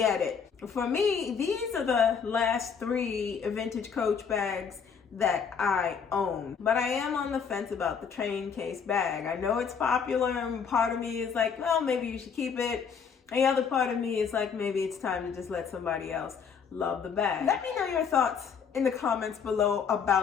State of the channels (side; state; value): right; quieter; 6.5 dB